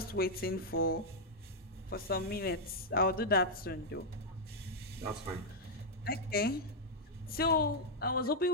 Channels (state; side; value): normal; both; correlation -0.03